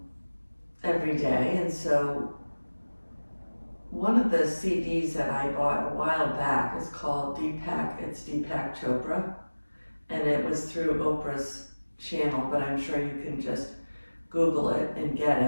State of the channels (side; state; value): both; inverted; correlation -1.00